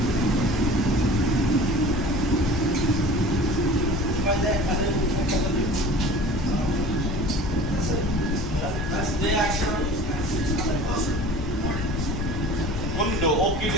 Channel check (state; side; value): noise; left; rumble, 4 dB below the sound